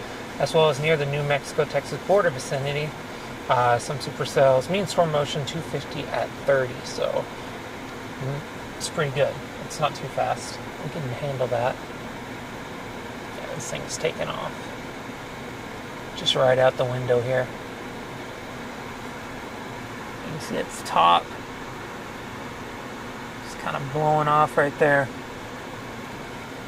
as well as near the New Mexico-Texas border vicinity. Some supercells. Mean storm motion 250 at 30, so it's pretty good. It's not too fast. We can handle that. Yeah, this thing's taking off. Just right out the window here. You can see its top. It's kind of blowing off right there.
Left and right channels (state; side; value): identical; both; correlation 1.00